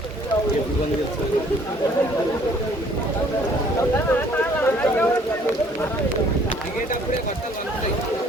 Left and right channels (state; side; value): normal; both; correlation 0.59